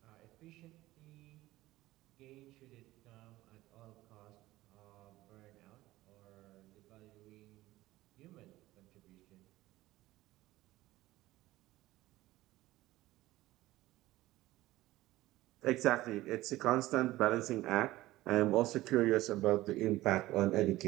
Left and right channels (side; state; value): left; quieter; 17.1 dB